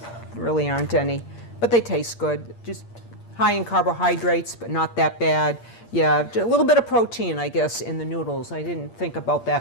really aren't any, but they taste good. Just high in carbohydrates, but not that bad. Yeah, a little bit of protein, I guess, in the noodles. I didn't think about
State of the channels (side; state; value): right; late; 8.6 ms